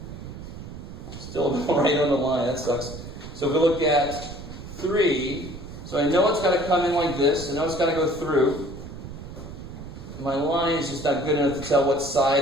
Still right on the line, that sucks. So if we look at 3, so I know it's got to come in like this. I know it's got to go through. My line is just not good enough to tell what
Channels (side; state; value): right; noise; rumble, 12 dB below the sound